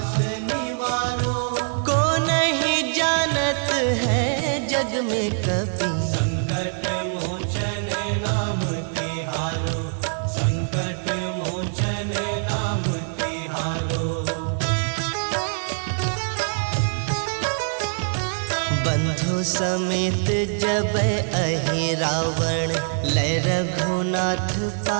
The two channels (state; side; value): silent; left; digital silence